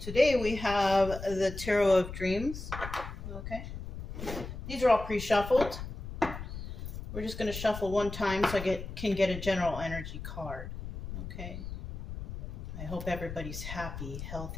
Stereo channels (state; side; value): noise; left; rumble, 9 dB below the sound